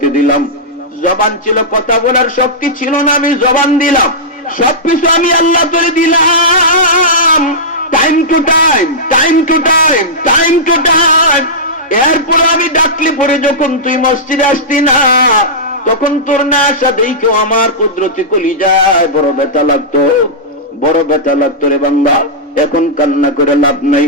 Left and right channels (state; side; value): normal; both; correlation -0.13